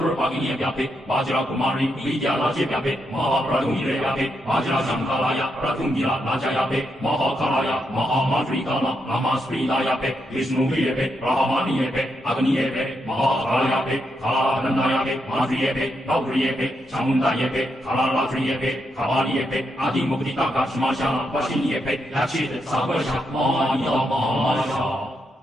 Pagini Gape, Vajra Kumari, Vidya Raja Gape, Mahapradumire Gape, Vajra Shankalaya, Pratungira Naja Gape, Mahakalaya, Mahamadrikana, Amasprida Gape, Vishnu Gape, Rahamani Gape, Agni Gape, Mahakalaya Gape, Kalananda Gape, Madri Gape, Gauri Gape, Chamunda Gape, Kalaratri Gape, Kavali Gape, Adi Mukti Taka Shmashana, Vashini Epe, Lachit, Sabasha, Maya Masha.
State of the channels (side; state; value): both; normal; correlation 0.81